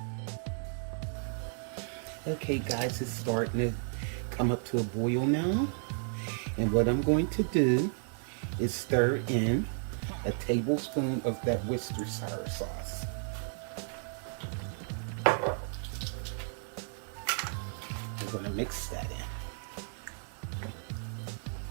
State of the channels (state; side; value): silent; left; 56 dB below the other